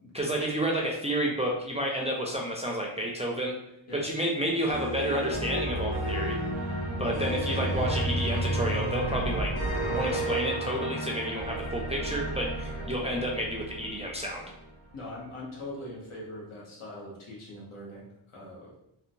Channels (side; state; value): both; normal; correlation 0.27